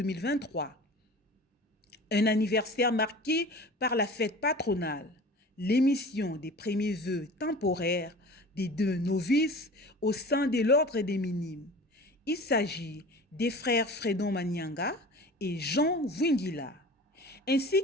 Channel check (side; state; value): both; normal; correlation 0.39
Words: Un anniversaire marqué par la fête patronale, l'émission des premiers vœux temporaires des 2 novices au sein de l'ordre des minimes. Il s'agit des frères Fredon Manianga et Jean Wingila, ainsi